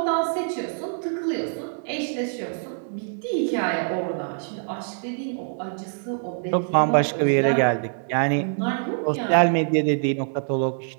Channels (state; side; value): silent; left; digital silence